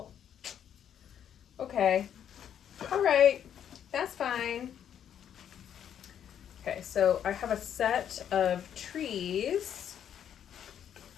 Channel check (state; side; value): quieter; right; 9.3 dB